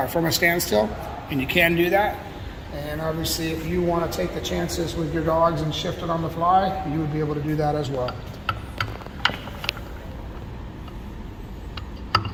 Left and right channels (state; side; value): identical; both; correlation 1.00